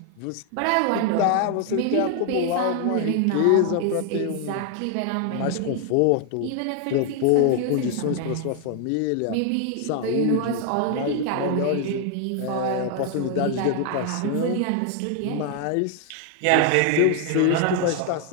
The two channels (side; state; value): both; different; correlation 0.00